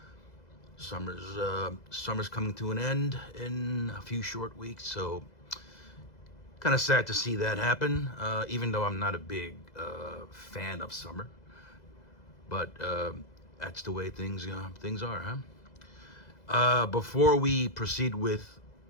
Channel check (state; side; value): late; right; 2.0 ms